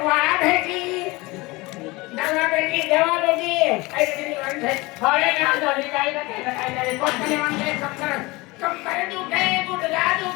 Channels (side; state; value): right; quieter; 23.0 dB